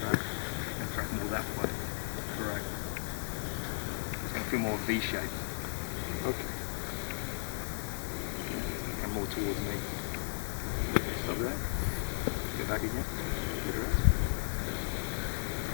to track more that way. Correct. It's going to feel more V-shaped. Okay. Yeah, it's going to come more towards me. Stop there. Go back again. Better up.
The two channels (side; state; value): right; silent; digital silence